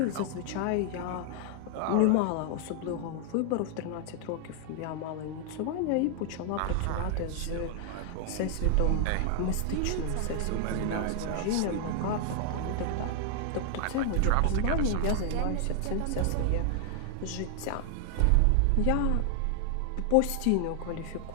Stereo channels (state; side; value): different; both; correlation 0.00